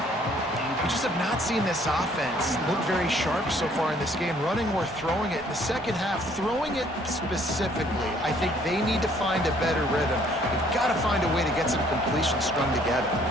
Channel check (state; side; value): normal; both; correlation 0.61